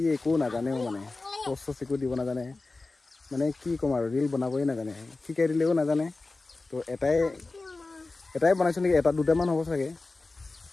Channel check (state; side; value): quieter; right; 3.4 dB